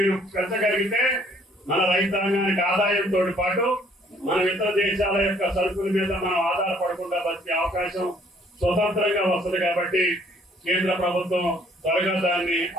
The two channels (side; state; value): both; normal; correlation 0.61